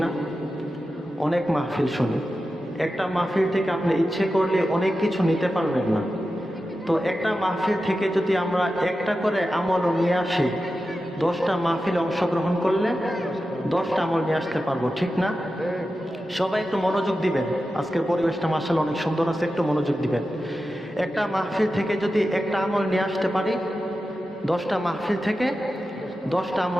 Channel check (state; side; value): normal; both; correlation 0.92